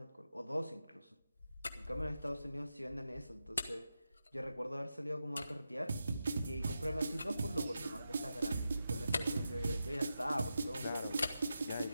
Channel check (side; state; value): both; inverted; correlation -0.89